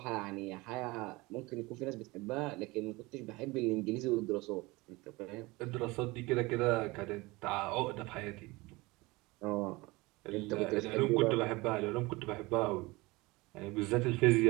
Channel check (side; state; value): left; quieter; 22.7 dB